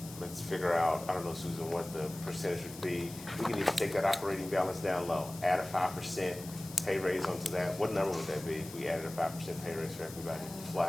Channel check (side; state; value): left; noise; hiss, 15 dB below the sound